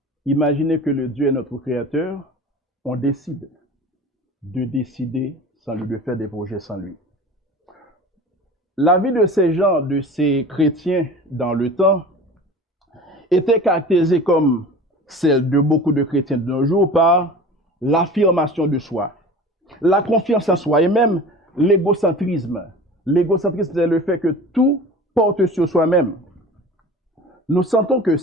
Imaginez que le Dieu est notre créateur, on décide de décider sans lui, de faire des projets sans lui. La vie de ces gens, de ces chrétiens dans le temps, était caractérisée comme celle de beaucoup de chrétiens de nos jours par l'affirmation de soi, la confiance en soi et même l'égocentrisme. L'égocentrisme, c'est le fait que tout porte sur soi-même. Nous sentons que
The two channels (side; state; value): both; normal; correlation 0.38